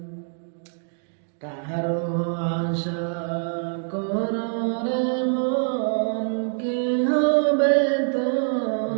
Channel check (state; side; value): silent; left; 62 dB below the other